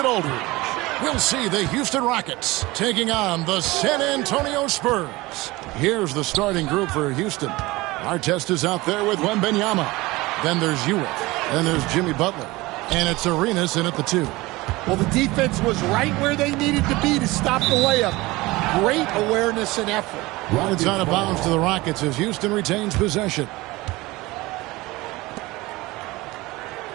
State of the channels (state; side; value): quieter; left; 20.9 dB